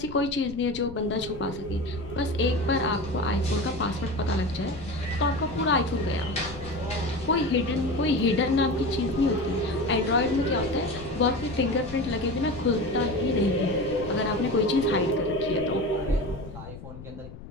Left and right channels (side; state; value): left; noise; rumble, 14 dB below the sound